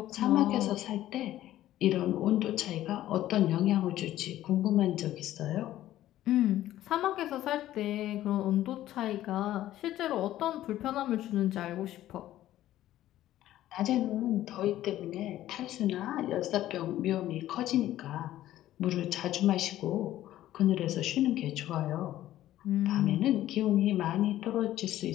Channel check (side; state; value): right; quieter; 13.7 dB